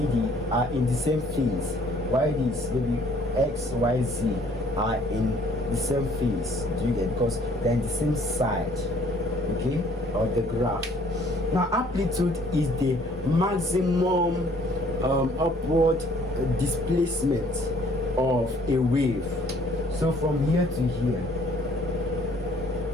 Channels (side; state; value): both; normal; correlation 0.59